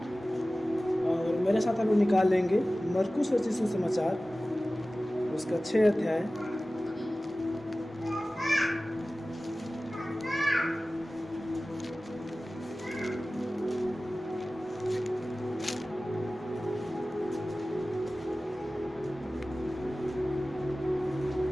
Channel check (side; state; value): both; normal; correlation 0.97